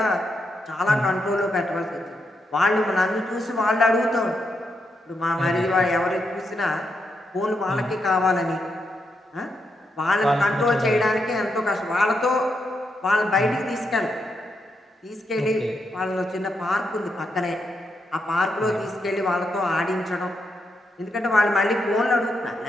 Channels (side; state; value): both; normal; correlation 0.82